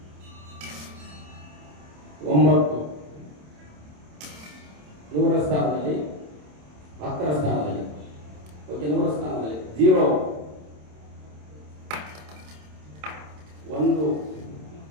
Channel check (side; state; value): left; late; 27 ms